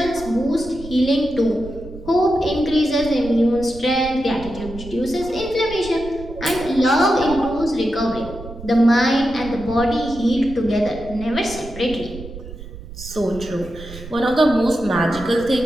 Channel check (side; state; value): right; noise; rumble, 14 dB below the sound